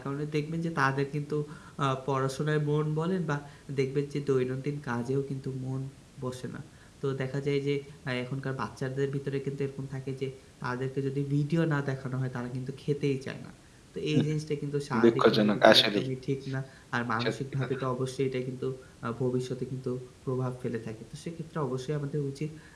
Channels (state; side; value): identical; both; correlation 1.00